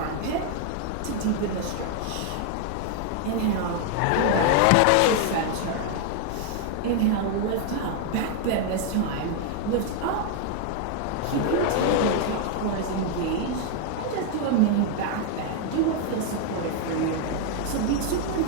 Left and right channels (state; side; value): different; both; correlation 0.00